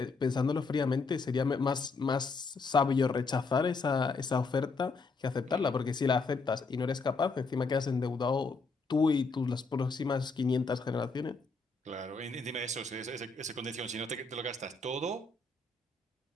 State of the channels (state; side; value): quieter; right; 4.1 dB